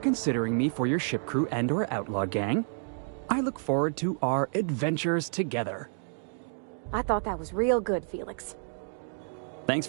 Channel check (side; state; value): left; silent; 58 dB below the other